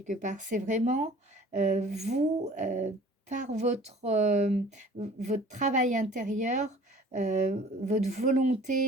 part. C'est vraiment vous, par votre travail intérieur, votre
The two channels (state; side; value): normal; both; correlation 0.48